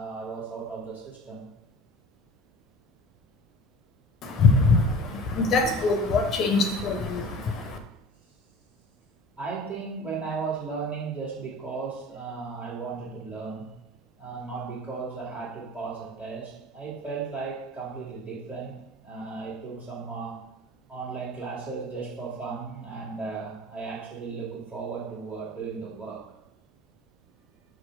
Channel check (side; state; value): both; normal; correlation 0.40